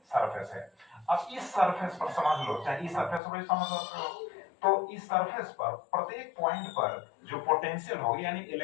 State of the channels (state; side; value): drops out; right; at 3.2 s